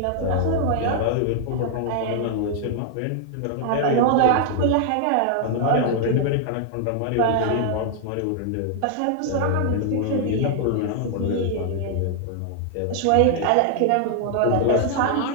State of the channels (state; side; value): different; both; correlation 0.00